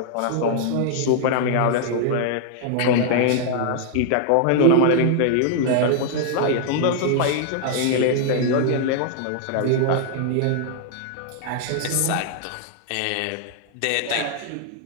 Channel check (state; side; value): different; both; correlation 0.00